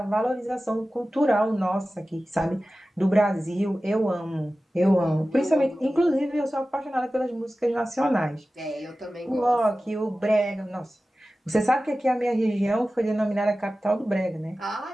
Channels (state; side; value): normal; both; correlation 0.96